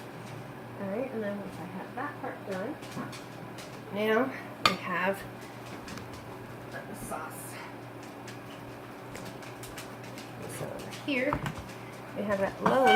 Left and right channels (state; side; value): identical; both; correlation 1.00